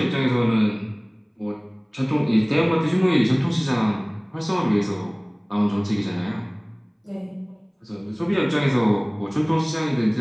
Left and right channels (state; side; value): identical; both; correlation 1.00